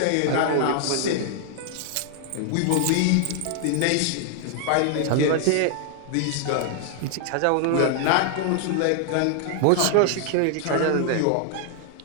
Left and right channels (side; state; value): both; different; correlation 0.00